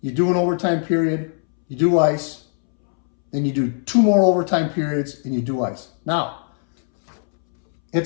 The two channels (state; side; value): silent; right; 66 dB below the other